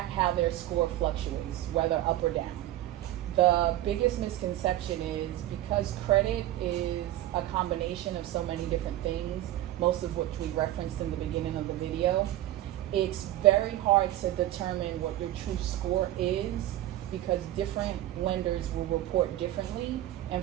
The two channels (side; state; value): left; quieter; 14.4 dB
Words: how their score fluctuates, whether up or down. The biggest misconception is because credit is a combination of so many different things, most of which we referenced in the beginning of the video, it's very hard to determine what your true score is because different lenders will report differently, and